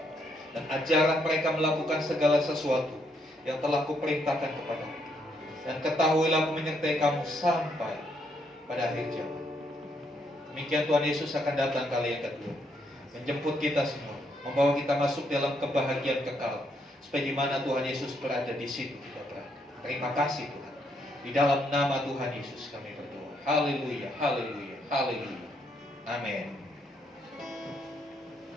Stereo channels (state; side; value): normal; both; correlation 0.74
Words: Dan ajarlah mereka melakukan segala sesuatu yang telah kuperintahkan kepadamu. Dan ketahuilah aku menyertai kamu sampai pada akhir zaman. Demikian Tuhan Yesus akan datang kali yang kedua, menjemput kita semua, membawa kita masuk dalam kebahagiaan kekal, supaya di mana Tuhan Yesus berada, di situ kita berada. Terima kasih Tuhan. Di dalam nama Tuhan Yesus kami berdoa. Haleluya, haleluya, haleluya. Amin.